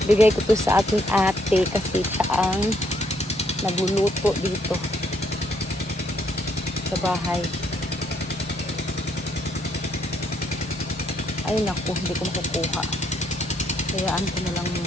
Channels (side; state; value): both; normal; correlation 0.71